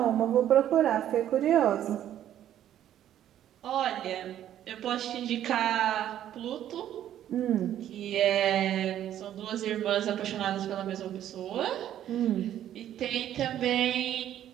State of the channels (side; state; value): left; quieter; 11.3 dB